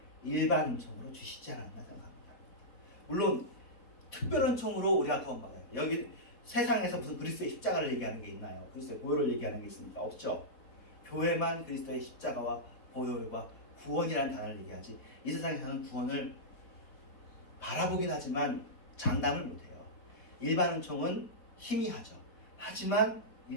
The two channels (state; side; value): late; right; 4.2 ms